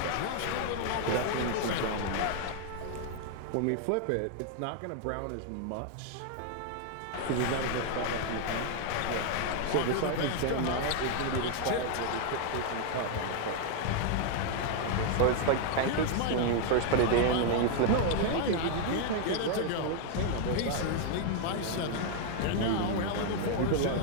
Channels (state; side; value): different; both; correlation 0.00